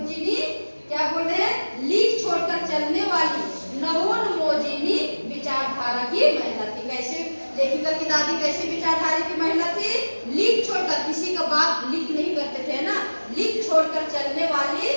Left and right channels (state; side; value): inverted; both; correlation -1.00